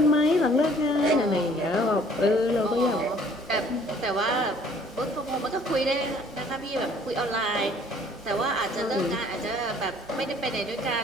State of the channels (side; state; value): both; normal; correlation 0.57